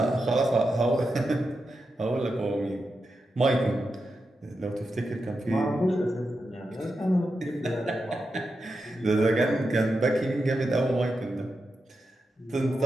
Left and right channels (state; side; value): normal; both; correlation 0.88